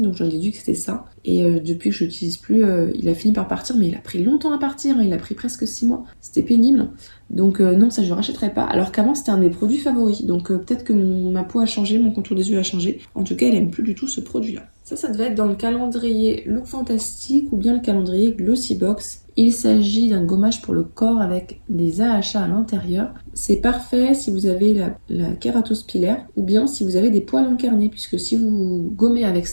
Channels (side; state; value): both; inverted; correlation -1.00